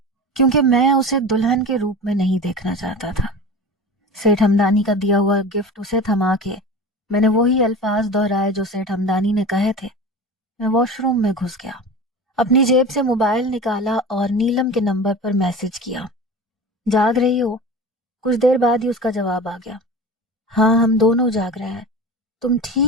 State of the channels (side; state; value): both; normal; correlation 0.33